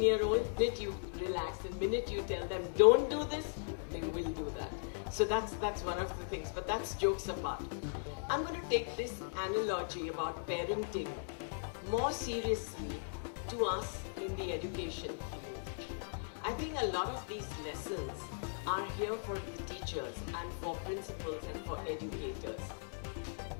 the minute you relax, the minute you tell them don't do this, they will do that. So that's one of the things, but that's jokes apart. I'm going to take this analogy about parenting more seriously to us in the education field. I think a lot of these lessons are here for the teachers and for principals and for educators.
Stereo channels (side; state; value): right; silent; digital silence